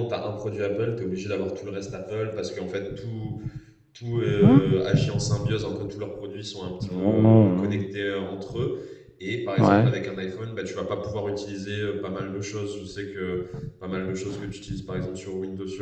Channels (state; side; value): identical; both; correlation 1.00